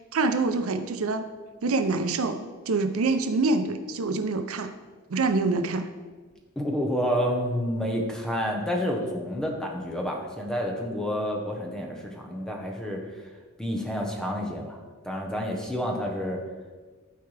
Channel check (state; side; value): normal; both; correlation 0.43